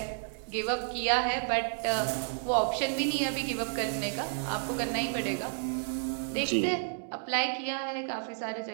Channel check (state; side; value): silent; left; digital silence